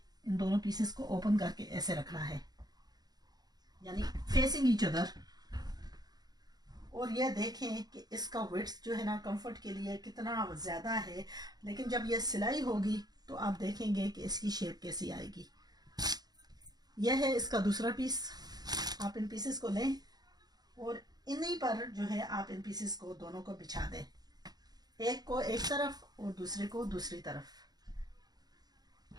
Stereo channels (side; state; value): left; late; 0.19 ms